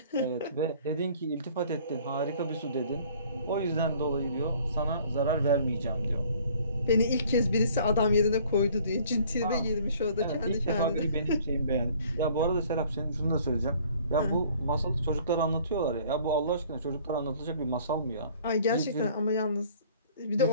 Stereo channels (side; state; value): both; inverted; correlation -0.55